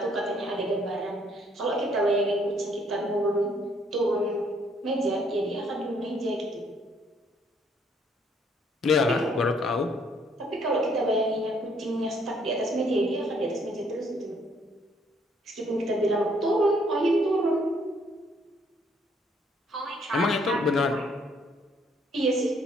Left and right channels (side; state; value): both; normal; correlation 0.66